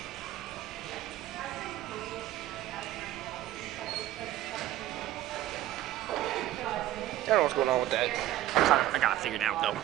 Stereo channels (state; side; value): quieter; left; 14.1 dB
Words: I don't know what's going on with that. I got it figured out, though.